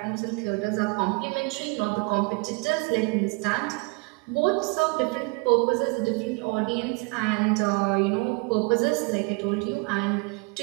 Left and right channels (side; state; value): left; quieter; 30.0 dB